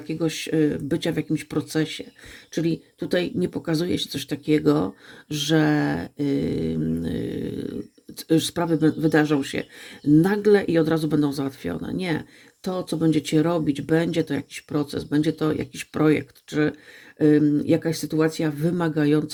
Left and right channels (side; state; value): both; identical; correlation 1.00